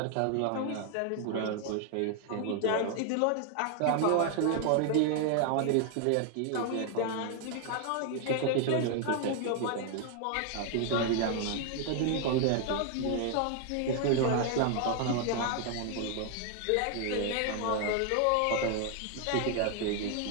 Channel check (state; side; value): different; both; correlation 0.00